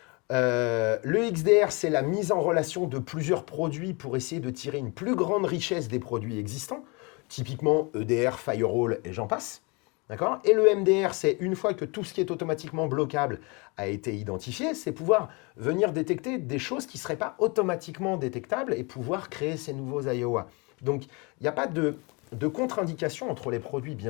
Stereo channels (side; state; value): right; quieter; 29.1 dB